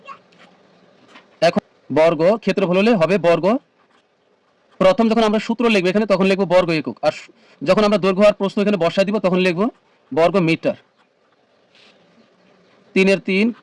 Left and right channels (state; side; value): identical; both; correlation 1.00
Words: এখন বর্গ ক্ষেত্রফল হলে হবে বর্গ, প্রথম যখন আমরা সূত্র লিখবো এখানে তখন লিখবো বর্গ একক, আর যখন আমরা দৈর্ঘ্য আর প্রস্থ এখানে বসায় দিব তখন লিখবো বর্গ মিটার। 3 এর 3